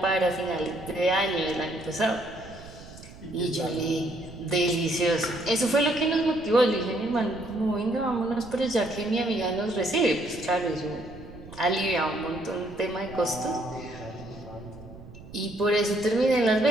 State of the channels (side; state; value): right; noise; rumble, 17 dB below the sound